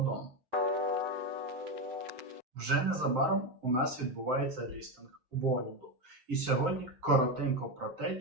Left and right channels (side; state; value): left; late; 7.7 ms